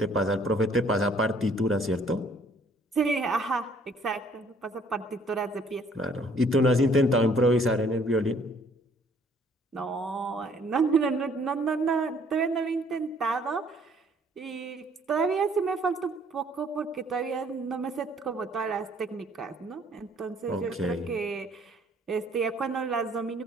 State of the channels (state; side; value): normal; both; correlation 0.60